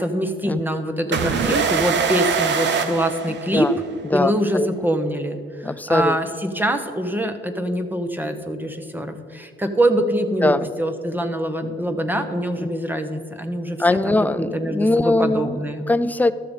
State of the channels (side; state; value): both; normal; correlation 0.70